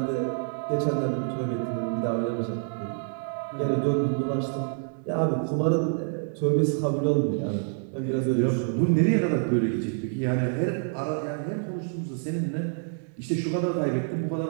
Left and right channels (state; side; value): silent; left; digital silence